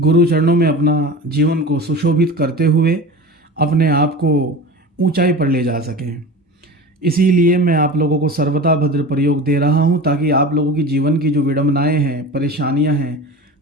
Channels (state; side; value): normal; both; correlation 0.33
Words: चरणों में अपना जीवन को सुशोभित करते हुए अपने आप को ऊंचाई पर ले जा सकें। इसीलिए मैं आप लोगों को सर्वता भद्र प्रयोग दे रहा हूं, ताकि आप लोगों की जीवन की जो विडंबनाएं हैं, परेशानियां हैं,